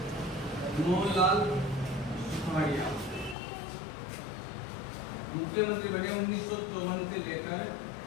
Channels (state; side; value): drops out; right; at 3.4 s